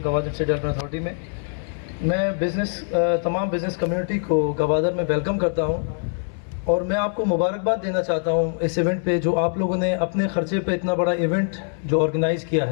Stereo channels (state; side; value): silent; right; 63 dB below the other